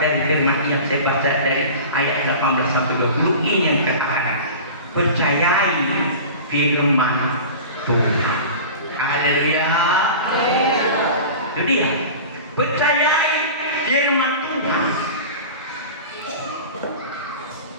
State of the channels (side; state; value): both; inverted; correlation -0.35